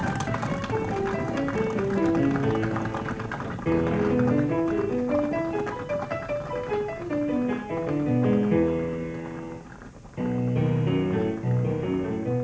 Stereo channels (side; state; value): both; identical; correlation 1.00